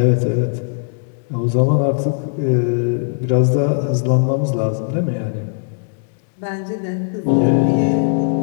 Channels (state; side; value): silent; right; digital silence